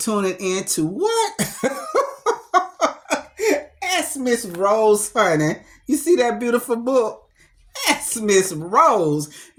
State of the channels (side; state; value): both; identical; correlation 1.00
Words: in to what? Ask Miss Rose, honey. You see that beautiful book? Ask Miss Rose.